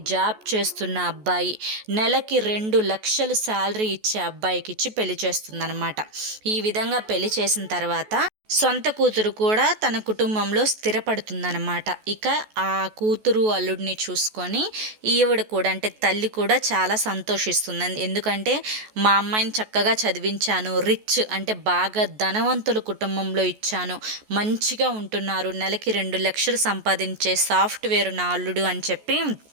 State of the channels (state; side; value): late; left; 14 ms